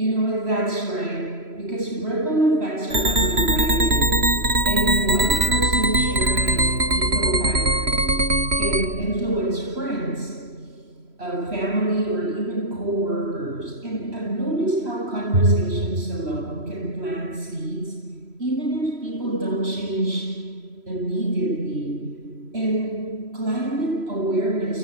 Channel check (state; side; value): late; left; 3.0 ms